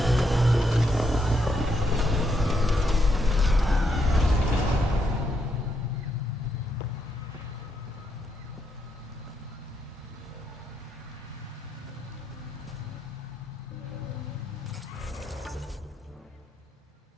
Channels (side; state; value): both; normal; correlation 0.79